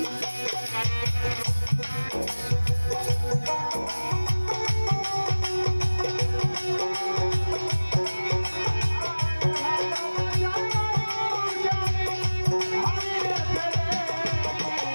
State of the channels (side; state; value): both; inverted; correlation -1.00